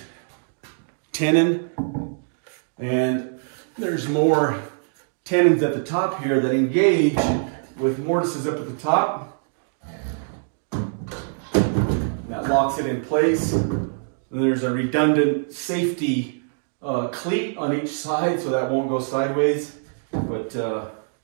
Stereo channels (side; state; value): left; silent; digital silence